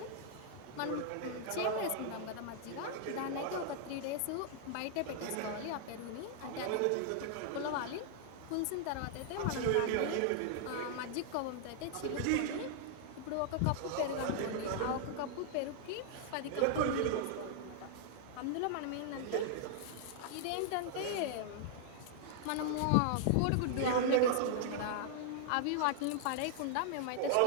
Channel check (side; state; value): both; different; correlation -0.01